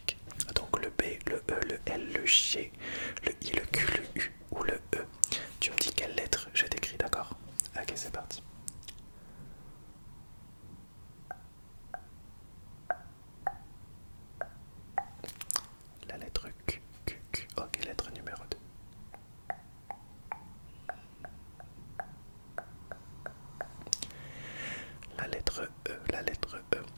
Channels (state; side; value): inverted; both; correlation -1.00